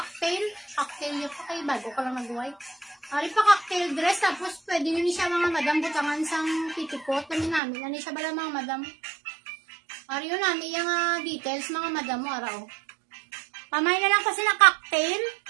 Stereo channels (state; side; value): drops out; left; at 7.6 s